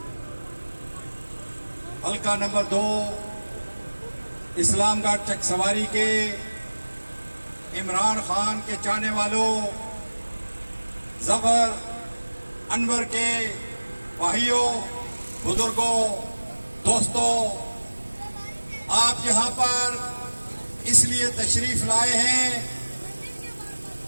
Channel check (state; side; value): inverted; both; correlation -1.00